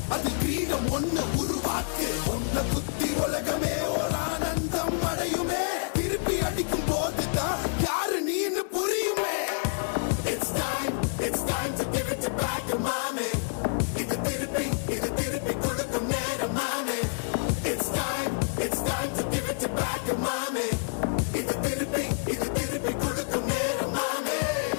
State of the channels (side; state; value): right; silent; 56 dB below the other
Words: அது கிரீடம் ஒண்ணு உருவாக்கு. ஒன்ன குத்தி உலகமே ஒரு ஆனந்தம் அடையுமே. திருப்பி அடிக்கும் போதுதான் யாரு நீன்னு புரியுமே. It's time to give it back to mommy. இது திருப்பி கொடுக்கும் நேரம் மாமே. It's time to give it back to mommy. இது திருப்பி கொடுக்கும் நேரம் மாமே.